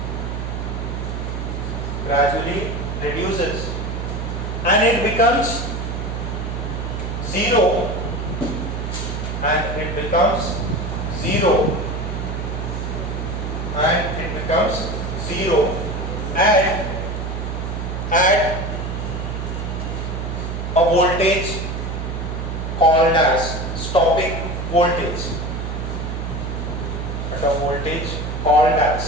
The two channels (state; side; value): noise; right; hum, 4 dB below the sound